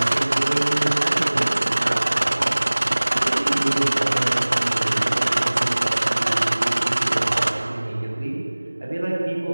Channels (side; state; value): both; inverted; correlation -1.00